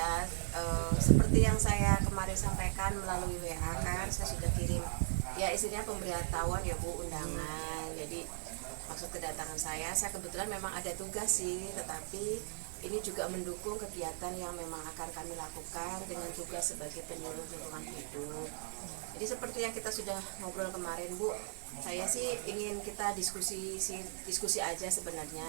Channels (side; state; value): left; silent; digital silence